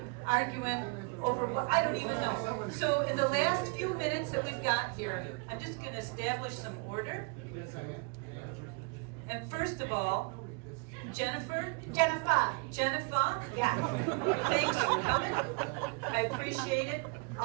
arguing over what I don't even know. So in the last few minutes that we've got here, I'm just going to establish some order. And first of all, Jennifer. Jennifer. Yeah. Thanks for coming. I appreciate it.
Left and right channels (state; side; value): quieter; left; 33.0 dB